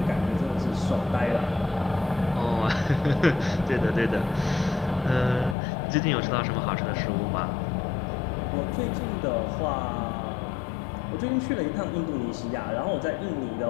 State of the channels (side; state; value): right; drops out; at 5.6 s